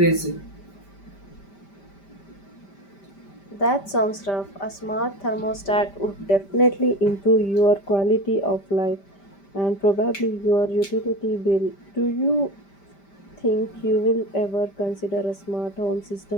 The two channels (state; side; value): late; right; 5.1 ms